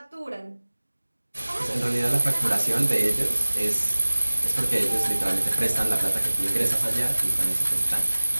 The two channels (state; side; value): inverted; both; correlation -1.00